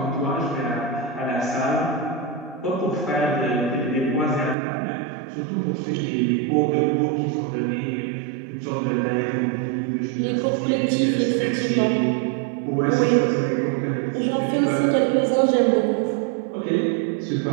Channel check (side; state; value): left; drops out; at 4.5 s